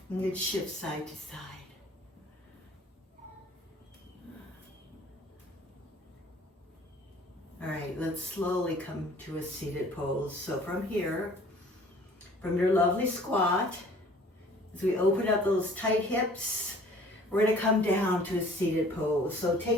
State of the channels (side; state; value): both; normal; correlation 0.52